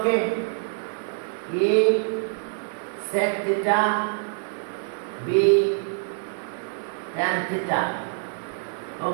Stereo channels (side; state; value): left; silent; 61 dB below the other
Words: a sec theta, b tan theta,